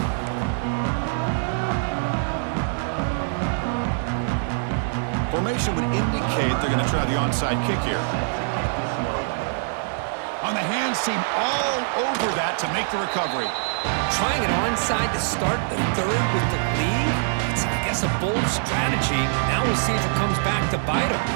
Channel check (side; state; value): left; silent; digital silence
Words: Formation would indicate they're going to try the onside kick here. On the hands team all over that to make the recovery. Trying it onside to start the 3rd with the lead? It's, I guess, a bold strategy. Now we'll see if it comes back to bite him.